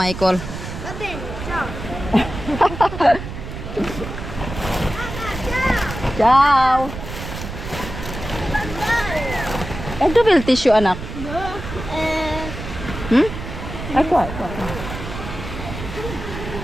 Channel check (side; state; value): right; noise; rumble, 9 dB below the sound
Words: Va bene, ciao. Ciao. Eh, dove il tissue, anak? Hmm? Ecco.